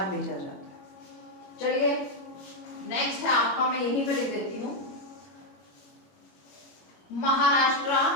भेजा जाता है। चलिए, नेक्स्ट है आपका, मैं यहीं पे लिख देती हूँ, महाराष्ट्र,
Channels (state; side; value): late; right; 21 ms